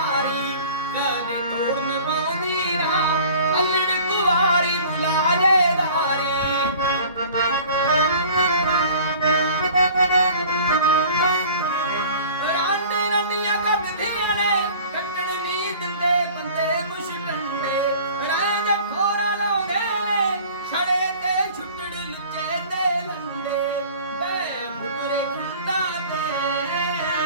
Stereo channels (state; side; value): inverted; both; correlation -0.46